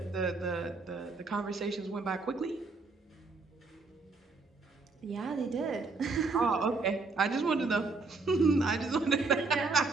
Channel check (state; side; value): quieter; left; 3.9 dB